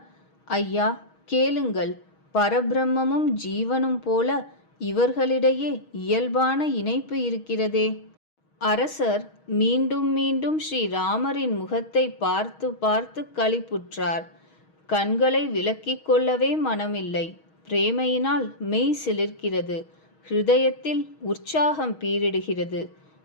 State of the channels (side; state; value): right; late; 6.3 ms